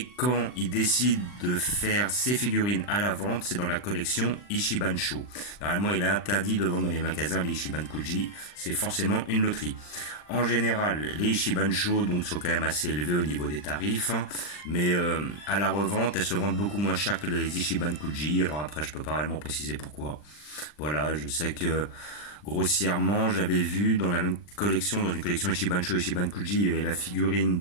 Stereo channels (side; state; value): right; late; 40 ms